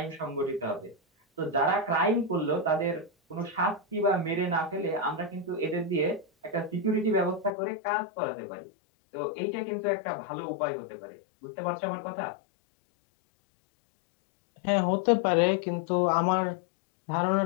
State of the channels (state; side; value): drops out; right; at 7.5 s